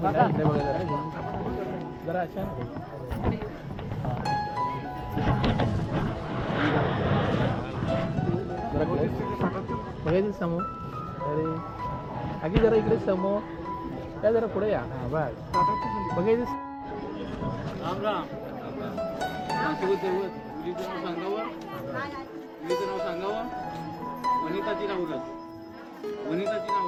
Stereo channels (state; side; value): identical; both; correlation 1.00